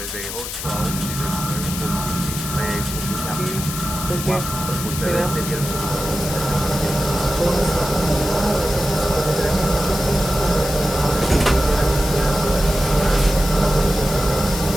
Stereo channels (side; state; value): left; noise; hiss, 7 dB below the sound